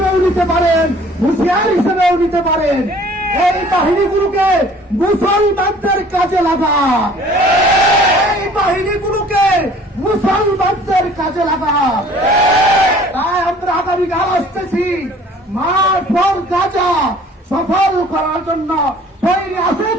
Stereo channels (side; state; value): both; normal; correlation 0.52